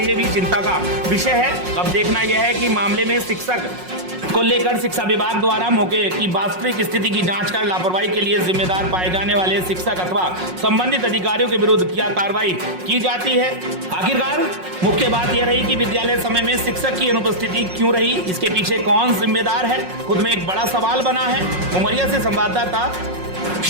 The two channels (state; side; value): late; left; 5.5 ms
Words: भी चिंता का विषय है। अब देखना यह है कि मामले में शिक्षक को लेकर शिक्षा विभाग द्वारा मौके की वास्तविक स्थिति की जांच कर लापरवाही के लिए जिम्मेदार पाए जाने वाले शिक्षक अथवा संबंधित अधिकारियों के विरुद्ध क्या कार्रवाई की जाती है। आखिरकार मुख्य बात यह रही कि विद्यालय समय में शिक्षक की अनुपस्थिति क्यों रही, इसके पीछे कौन जिम्मेदार है, खुद में एक बड़ा सवाल बना है। उमरिया से संवाददाता